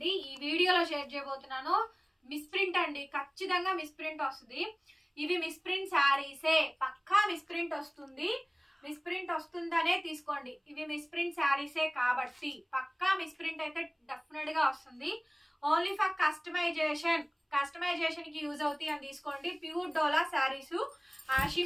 ఈ వీడియోలో షేర్ చేయబోతున్నాను మిస్ప్రింట్ అండి. ఖచ్చితంగా మిస్ప్రింట్ వస్తుంది. ఇవి మిస్ప్రింట్ శారీసే, పక్కా మిస్ప్రింట్ వస్తుంది. మిస్ప్రింట్ వస్తుందనే తీసుకోండి. ఇవి మిస్ప్రింట్ శారీసే కాబట్టి పక్కా మిస్ప్రింట్ అయితే డెఫినెట్ గా వస్తుంది. ఓన్లీ ఫర్ కస్టమైజేషన్ కి యూజ్ అవుతాయి అని తీసుకోండి. ప్యూర్ డోలా శారీస్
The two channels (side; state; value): both; identical; correlation 1.00